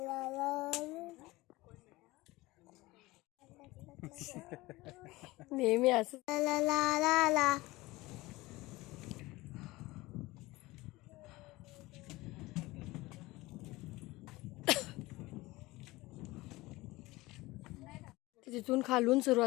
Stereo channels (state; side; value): quieter; right; 20.3 dB